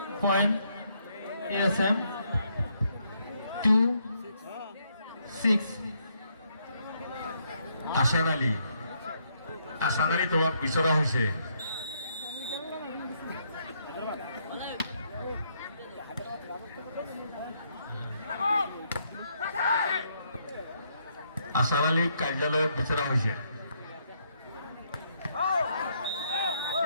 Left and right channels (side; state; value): both; inverted; correlation -0.73